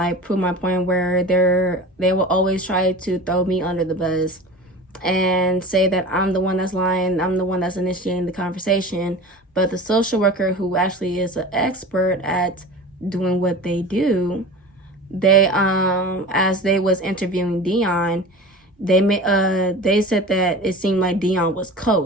prove my point, where they will always try to throw me under the bus and say that I'm the one that's lying, I'm the one that's initiating the conversation. But the social worker, who actually is an expert at doing what they do, they as they was interviewing Dion, they said that it seemed like Dion was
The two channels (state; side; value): normal; both; correlation 0.35